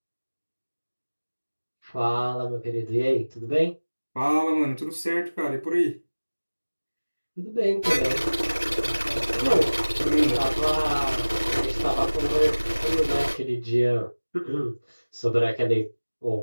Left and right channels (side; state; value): both; inverted; correlation -1.00